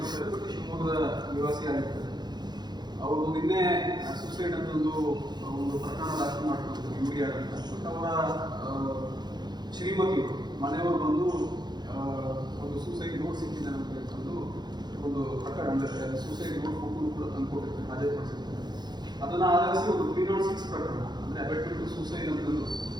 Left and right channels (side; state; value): left; late; 0.21 ms